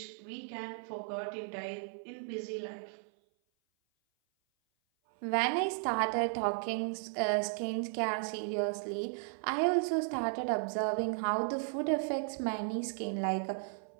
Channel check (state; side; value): silent; left; 54 dB below the other